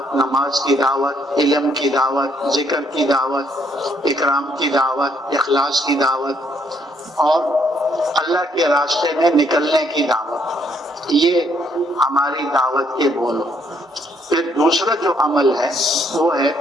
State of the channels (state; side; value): normal; both; correlation 0.69